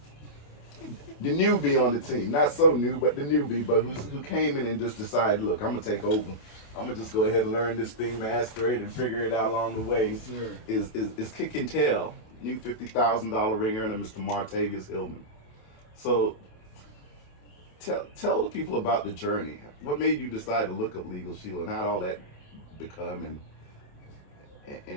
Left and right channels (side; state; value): right; late; 27 ms